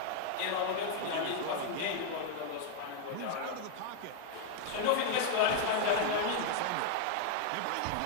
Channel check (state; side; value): different; both; correlation 0.00